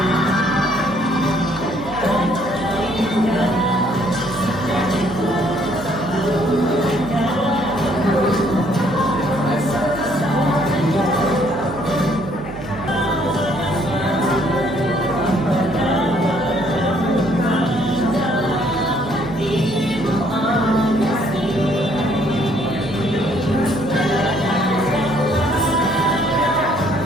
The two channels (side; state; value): right; noise; hum, 13 dB below the sound